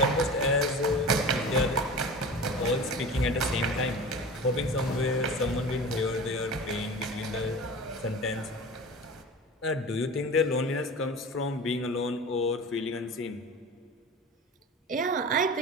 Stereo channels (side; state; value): both; normal; correlation 0.34